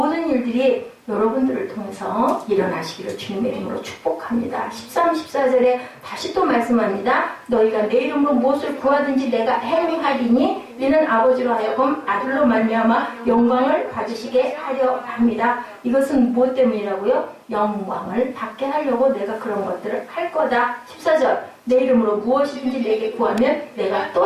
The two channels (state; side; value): identical; both; correlation 1.00